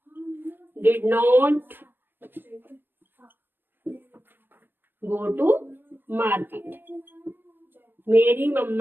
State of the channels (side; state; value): left; late; 0.096 ms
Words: did not go to market. मेरी